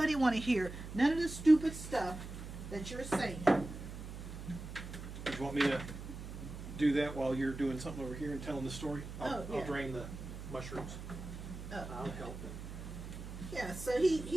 want to hear none of the stupid stuff that you're saying. Do you want me to do that while you're doing something over here and telling the story? I'll drain the mushrooms. Oh, I'll help. yeah, so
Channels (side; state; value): right; noise; hum, 10 dB below the sound